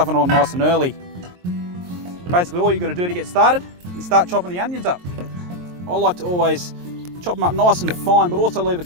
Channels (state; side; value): late; left; 23 ms